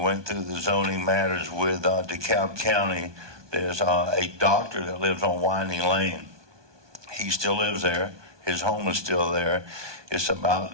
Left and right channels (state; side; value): late; left; 1.2 ms